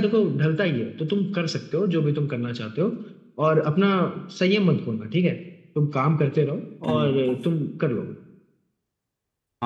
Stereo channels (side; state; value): both; identical; correlation 1.00